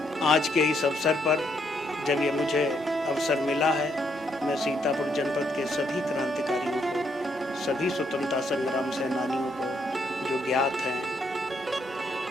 आज के इस अवसर पर जब ये मुझे अवसर मिला है, मैं सीतापुर जनपद के सभी क्रांतिकारियों को, सभी स्वतंत्रता संग्राम सेनानियों को जो ज्ञात हैं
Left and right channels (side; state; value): both; normal; correlation 0.74